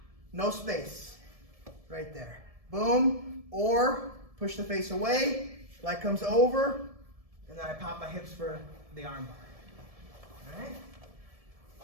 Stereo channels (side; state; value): left; late; 1.7 ms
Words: No space. Right there. Boom. Or push the face away, leg comes over, and then I pop my hips for the arm bar. All right?